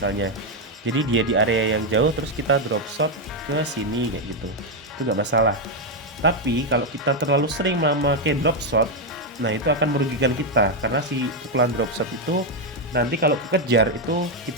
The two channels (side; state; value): both; normal; correlation 0.03